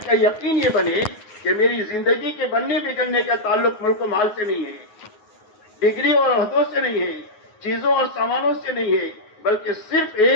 کا یقین یہ بنے کہ میری زندگی کے بننے بگڑنے کا تعلق ملک و مال سے نہیں ہے، ڈگری اور عہدوں سے نہیں ہے، چیزوں اور سامانوں سے نہیں ہے، بلکہ صرف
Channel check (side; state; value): right; late; 9.5 ms